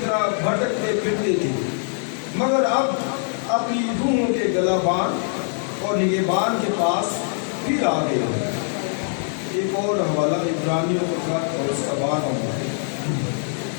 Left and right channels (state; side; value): silent; right; 64 dB below the other